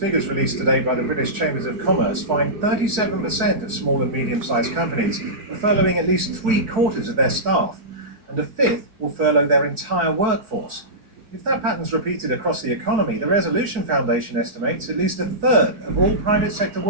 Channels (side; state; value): left; late; 4.6 ms